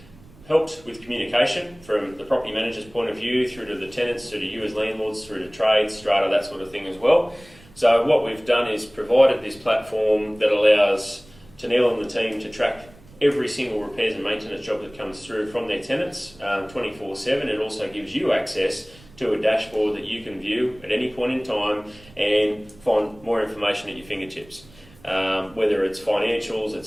helped with communication from the property manager's point of view, through to the tenants, through to you as landlords, through to trades, strata, that sort of thing as well. So what we've done is provided this platform that allows Tennille and the team to track every single repairs and maintenance job that comes through from their tenants 24/7. It also gives you access to a dashboard that you can view at any point in time and find more information at your fingertips. Whether it's financials,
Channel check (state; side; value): noise; right; rumble, 24 dB below the sound